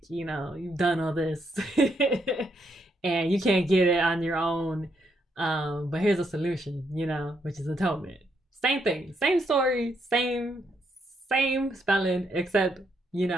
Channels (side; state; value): both; normal; correlation 0.76